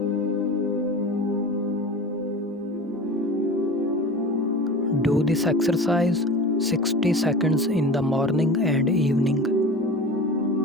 Do this exercise 60 seconds in the morning and evening.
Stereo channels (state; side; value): normal; both; correlation 0.34